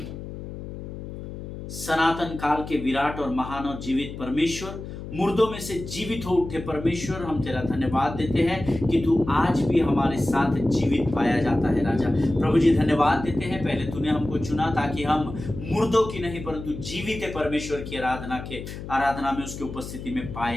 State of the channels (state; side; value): noise; left; hum, 10 dB below the sound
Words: सनातन काल के विराट और महान और जीवित परमेश्वर, मुर्दों में से जीवित हो उठे परमेश्वर, हम तेरा धन्यवाद देते हैं कि तू आज भी हमारे साथ जीवित पाया जाता है। राजा प्रभु जी, धन्यवाद देते हैं, पहले तूने हमको चुना ताकि हम मुर्दों की नहीं परंतु जीवित परमेश्वर की आराधना में, उसकी उपस्थिति में